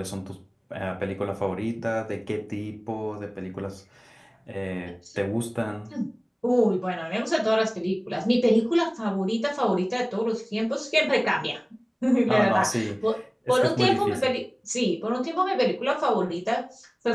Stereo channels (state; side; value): identical; both; correlation 1.00